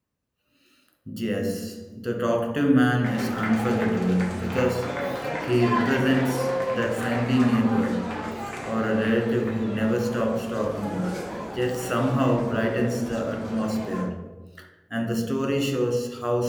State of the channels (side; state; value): both; identical; correlation 1.00